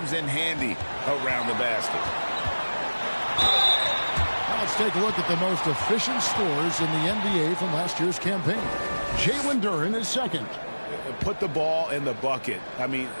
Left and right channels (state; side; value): inverted; both; correlation -1.00